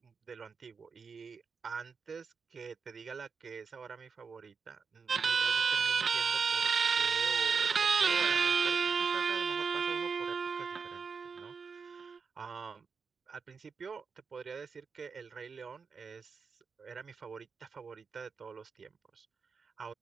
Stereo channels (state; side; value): quieter; left; 5.4 dB